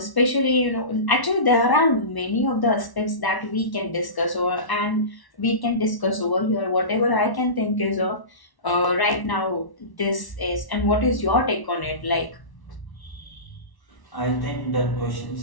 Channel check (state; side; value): late; right; 1.1 ms